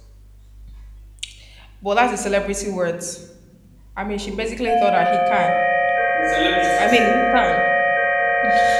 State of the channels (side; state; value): both; identical; correlation 1.00